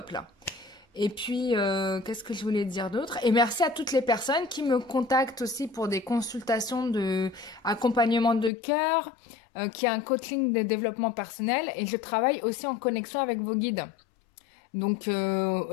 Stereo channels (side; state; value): right; drops out; at 8.5 s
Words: là. Et puis, qu'est-ce que je voulais dire d'autre? Et merci à toutes les personnes qui me contactent aussi pour des consultations de accompagnement de cœur, qui a un coaching de développement personnel. Et je travaille aussi en connexion avec vos guides. Donc,